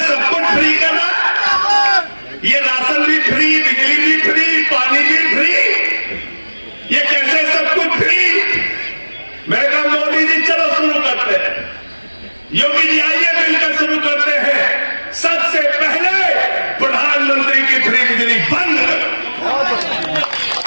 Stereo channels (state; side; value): inverted; both; correlation -1.00